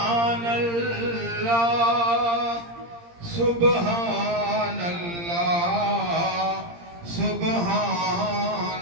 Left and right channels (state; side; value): late; left; 17 ms